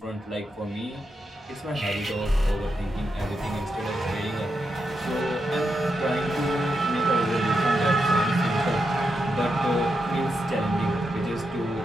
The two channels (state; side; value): normal; both; correlation 0.85